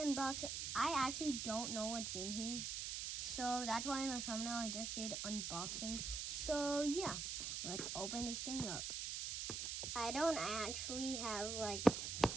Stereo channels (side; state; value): right; noise; hiss, 3 dB below the sound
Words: I actually don't know what's in here, so that's why in the thumbnail I just did unboxing. So yeah, let's open this thing up. I don't actually have like